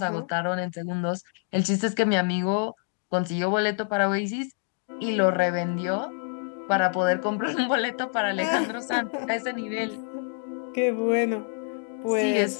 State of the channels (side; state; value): right; silent; 55 dB below the other